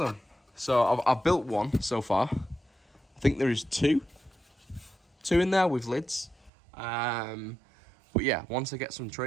So I've built one so far. I think there is two in there with lids. But yeah, once I get some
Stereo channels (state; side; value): drops out; left; at 6.5 s